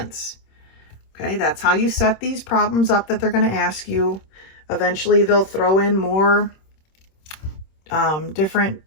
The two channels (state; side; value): late; right; 26 ms